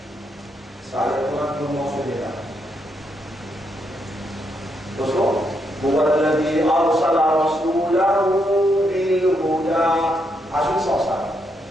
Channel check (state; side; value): normal; both; correlation 0.78